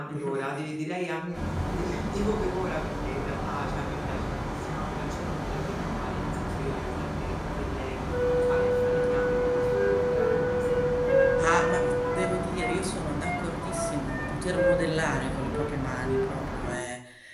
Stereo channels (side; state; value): both; identical; correlation 1.00